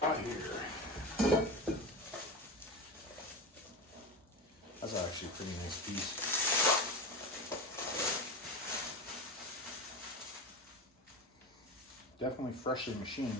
That's actually a pretty nice piece. Definitely freshly machined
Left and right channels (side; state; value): both; normal; correlation 0.24